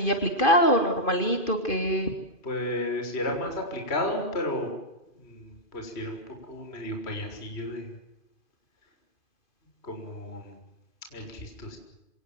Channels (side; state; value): right; late; 2.5 ms